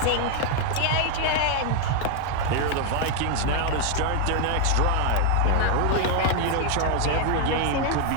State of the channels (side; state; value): both; different; correlation 0.00